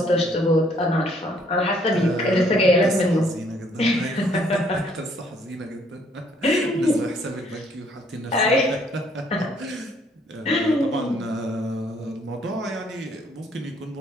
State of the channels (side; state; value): both; normal; correlation 0.65